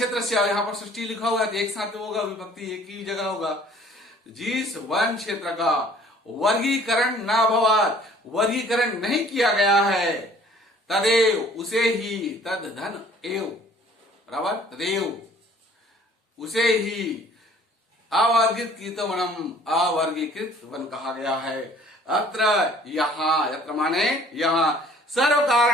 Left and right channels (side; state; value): both; normal; correlation 0.54